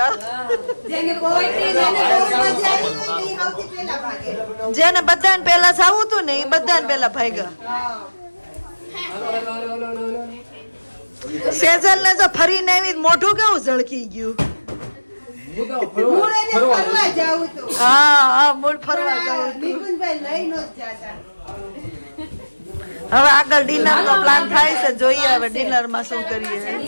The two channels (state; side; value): inverted; both; correlation -1.00